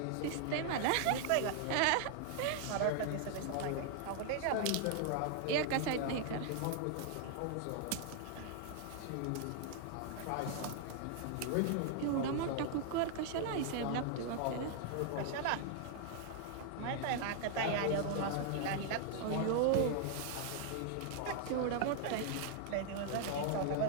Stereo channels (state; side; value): different; both; correlation 0.00